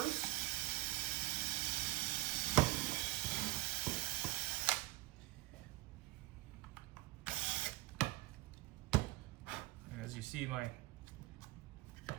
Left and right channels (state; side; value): quieter; left; 18.9 dB